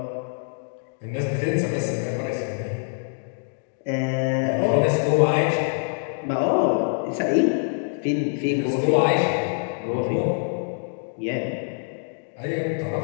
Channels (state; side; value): silent; right; digital silence